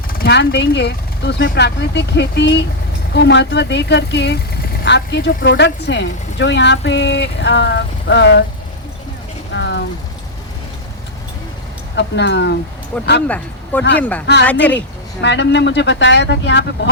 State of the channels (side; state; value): both; normal; correlation -0.05